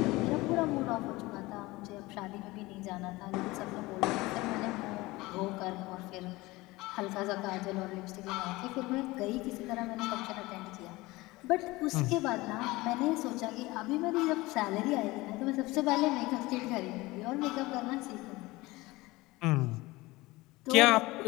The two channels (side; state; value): right; quieter; 20.8 dB